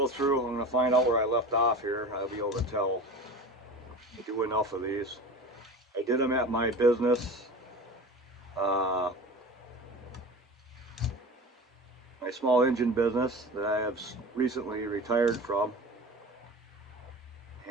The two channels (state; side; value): normal; both; correlation 0.34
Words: through, I'm going to find out where I left off here. I'll be able to tell. I do enough of these. I did them at my business, my small engine business that I have recently retired from,